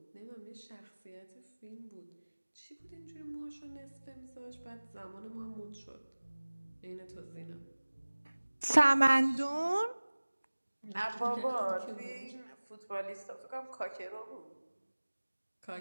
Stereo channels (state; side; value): inverted; both; correlation -1.00